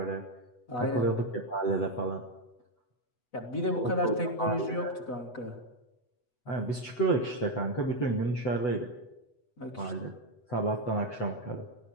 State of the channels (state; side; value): late; right; 8.0 ms